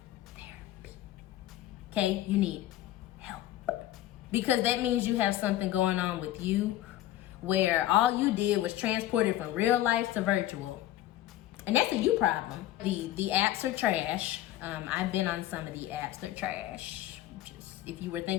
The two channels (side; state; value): right; quieter; 14.0 dB